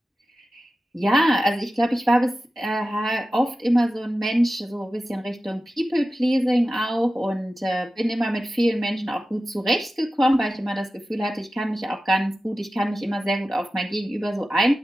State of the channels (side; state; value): both; normal; correlation 0.94